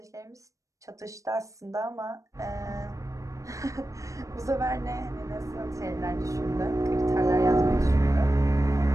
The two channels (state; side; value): late; left; 0.16 ms